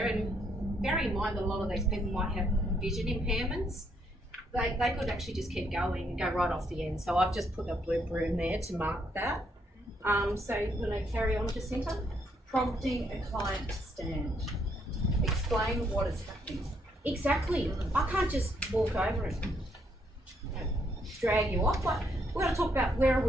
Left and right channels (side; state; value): both; normal; correlation 0.73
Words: And bear in mind that a lot of these people might have vision impairments. They could actually just keep going and go right off the end. So I've just put a blue broom there to mark that. So you want to carry on, Jacinta? Prompting a client to stand. Explain what is happening. Exactly. I can't just walk over and drag you off. Like, we've got to talk about where are